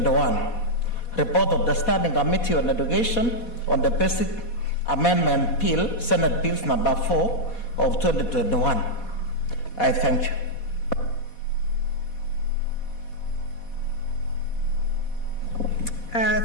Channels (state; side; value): late; right; 4.2 ms